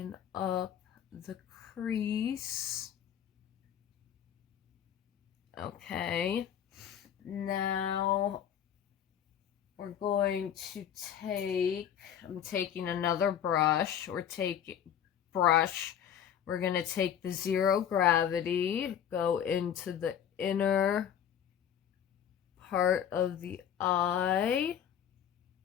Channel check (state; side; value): quieter; right; 9.2 dB